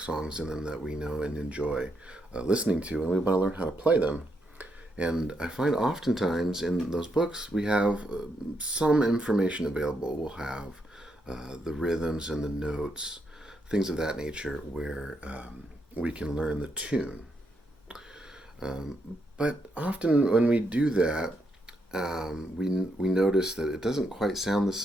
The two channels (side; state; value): both; normal; correlation 0.79